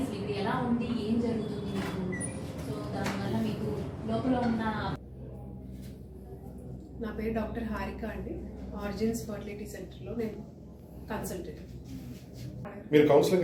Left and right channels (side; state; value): both; identical; correlation 1.00